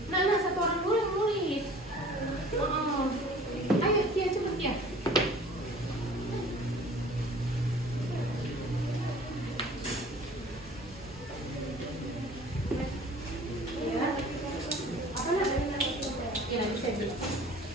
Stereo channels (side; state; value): both; normal; correlation 0.47